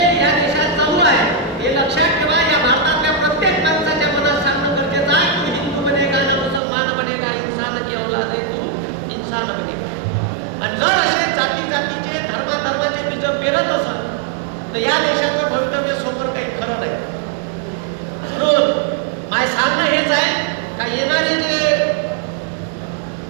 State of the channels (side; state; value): left; drops out; at 6.6 s